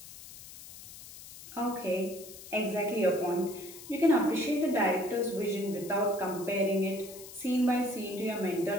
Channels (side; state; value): left; noise; hiss, 15 dB below the sound